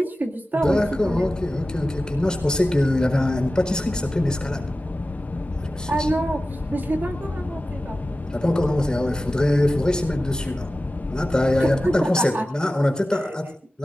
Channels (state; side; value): normal; both; correlation 0.95